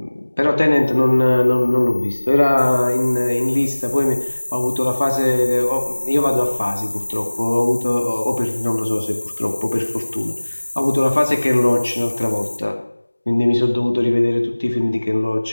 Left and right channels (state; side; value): inverted; both; correlation -1.00